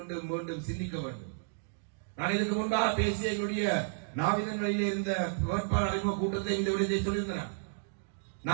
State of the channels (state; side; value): silent; left; digital silence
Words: மீண்டும் சிந்திக்க வேண்டும். நான் இதுக்கு முன்பாக பேசிய எங்களுடைய நாவிதன்களிலே இருந்த வேட்பாளர் அறிமுக கூட்டத்தை இந்த விடயத்தை சொல்லியிருந்தேன்.